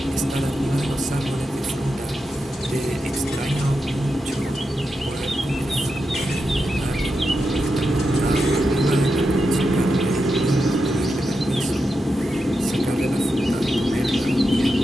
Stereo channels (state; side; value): normal; both; correlation 0.87